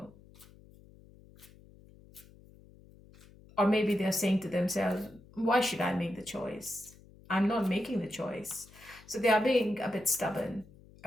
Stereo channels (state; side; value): noise; left; hum, 24 dB below the sound